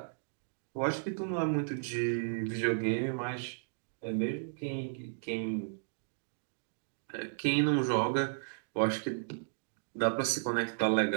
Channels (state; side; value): silent; left; digital silence